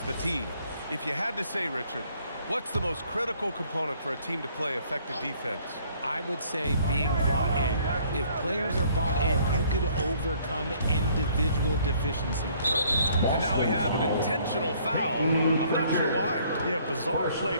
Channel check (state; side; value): inverted; both; correlation -0.61